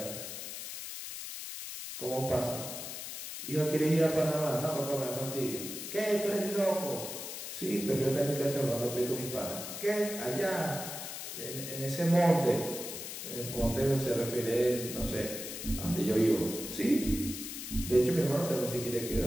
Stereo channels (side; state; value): left; noise; hiss, 8 dB below the sound